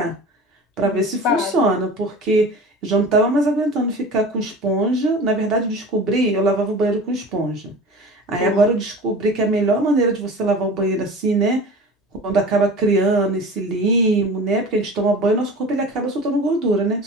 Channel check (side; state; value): both; normal; correlation 0.37